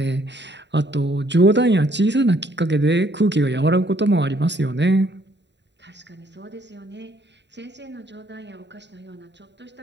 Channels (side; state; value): left; late; 0.51 ms